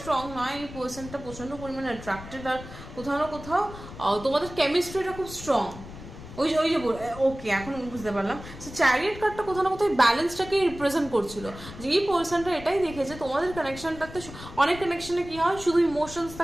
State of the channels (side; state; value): left; noise; rumble, 14 dB below the sound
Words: নয়, এই পার্সনটা প্রচণ্ড পরিমাণে অ্যাট্রাক্টেড, আর কোথাও না কোথাও তোমাদের কেমিস্ট্রিটা খুব স্ট্রং। ওই যে ওকে, এখন বুঝতে পারলাম। সো চ্যারিয়ট কার্ডটা কোথাও না কোথাও ব্যালেন্সটাকে রিপ্রেজেন্ট করছিল, যে এই পার্সনটা এটাই দেখেছে তোমাদের কানেকশনটাতে। অনেক কানেকশনে কি হয়, শুধু ইমোশনস